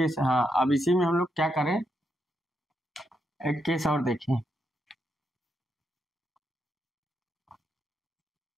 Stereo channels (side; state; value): both; normal; correlation 0.82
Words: हाँ अब इसी में हम लोग क्या करें, एक केस और देखें।